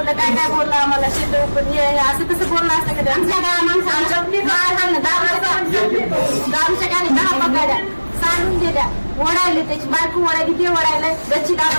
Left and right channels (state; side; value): inverted; both; correlation -1.00